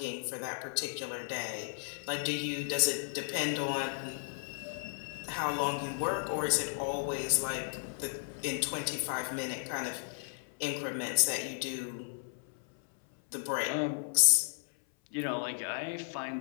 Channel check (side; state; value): right; silent; 55 dB below the other